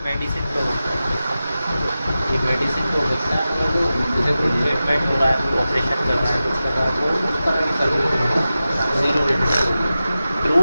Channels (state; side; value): inverted; both; correlation -0.94